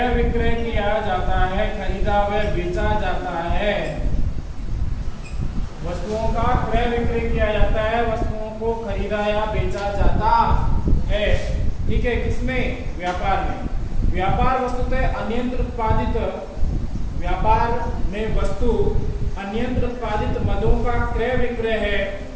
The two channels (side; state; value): both; identical; correlation 1.00